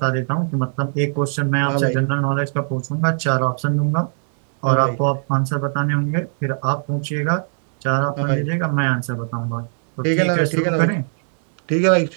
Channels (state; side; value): silent; left; digital silence